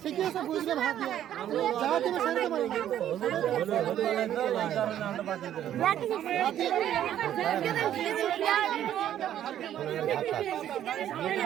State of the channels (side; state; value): left; quieter; 11.1 dB